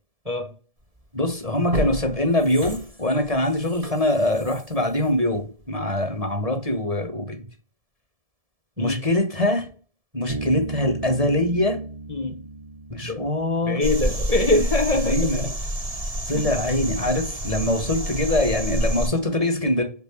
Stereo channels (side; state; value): left; late; 1.7 ms